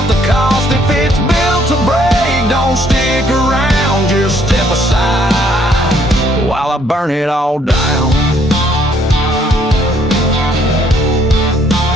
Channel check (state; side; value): normal; both; correlation 0.66